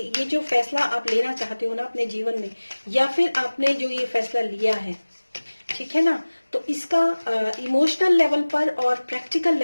जो फैसला आप लेना चाहते हो ना अपने जीवन में, या फिर आपने जो ये फैसला लिया है, ठीक है ना, तो इसका इमोशनल लेवल पर और प्रैक्टिकल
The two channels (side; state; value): both; inverted; correlation -1.00